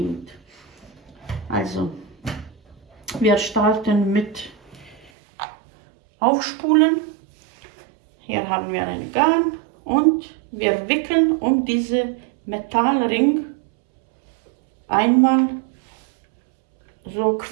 Also, wir starten mit Aufspulen. Hier haben wir ein Garn und wir wickeln um diese Metallring einmal so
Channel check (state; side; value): drops out; left; at 5.1 s